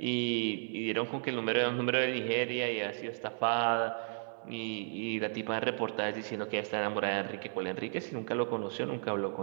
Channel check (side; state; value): left; silent; 55 dB below the other